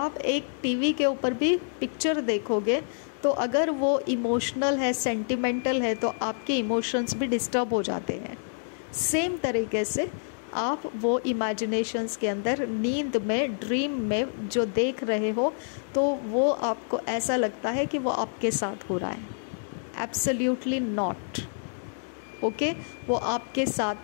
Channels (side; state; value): right; silent; digital silence